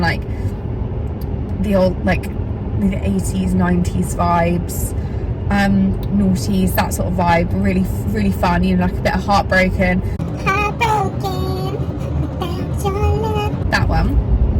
the old, like the 80s 90s vibes, noughties, that sort of vibe. Really fun, you know, like a bit of Heartbroken, that one.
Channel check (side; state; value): both; identical; correlation 1.00